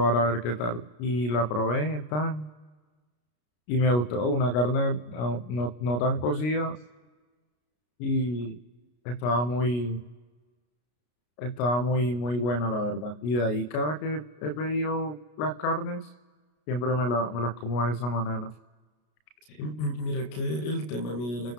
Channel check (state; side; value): late; right; 33 ms